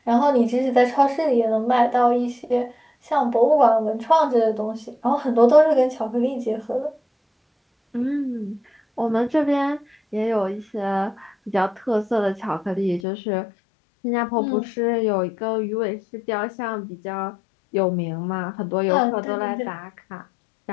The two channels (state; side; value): drops out; right; at 13.0 s